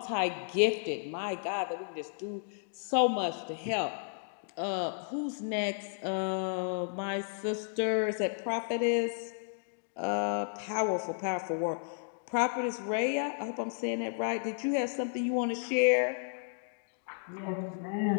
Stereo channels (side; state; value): right; silent; digital silence